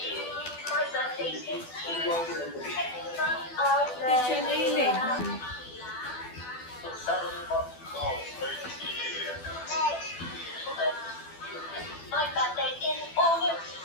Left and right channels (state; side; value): late; right; 12 ms